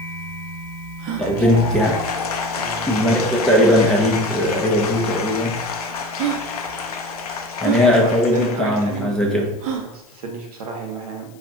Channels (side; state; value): left; noise; hiss, 29 dB below the sound